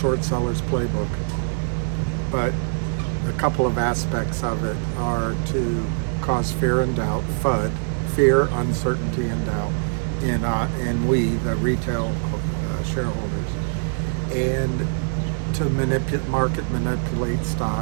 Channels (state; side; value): silent; left; digital silence